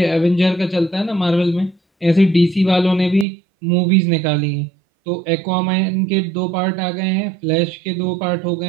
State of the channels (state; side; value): drops out; left; at 3.2 s